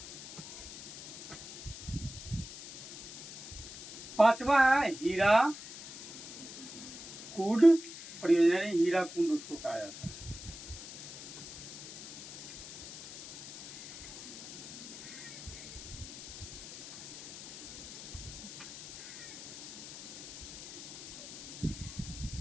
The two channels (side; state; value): left; noise; hiss, 12 dB below the sound